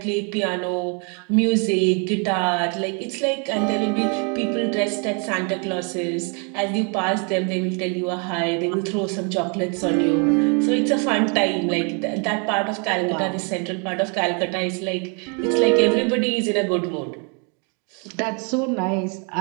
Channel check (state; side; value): quieter; left; 36.7 dB